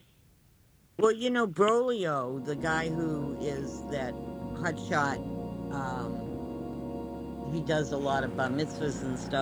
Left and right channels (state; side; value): identical; both; correlation 1.00